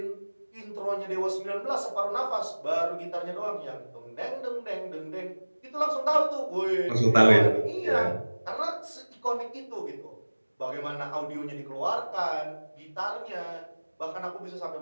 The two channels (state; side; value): inverted; both; correlation -1.00